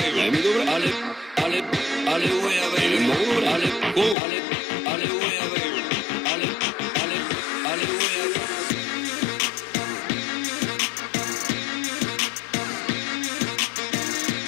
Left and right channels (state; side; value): drops out; right; at 4.2 s